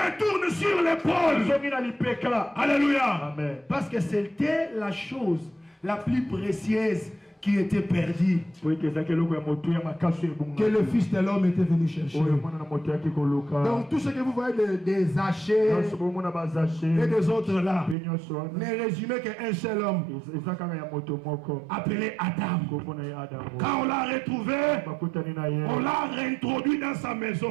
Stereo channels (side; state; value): left; drops out; at 17.9 s